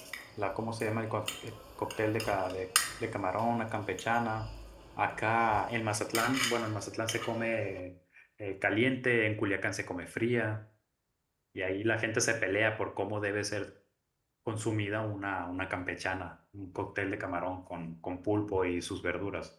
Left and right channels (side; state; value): both; identical; correlation 1.00